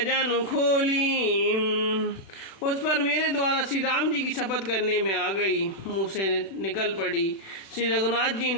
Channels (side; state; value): right; late; 36 ms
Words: खोली। उस पर मेरे द्वारा श्री राम जी की शपथ करने में आ गई, मुँह से निकल पड़ी। श्री रघुनाथ जी